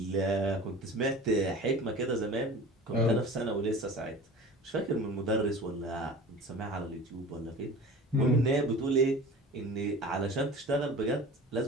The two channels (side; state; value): both; normal; correlation 0.38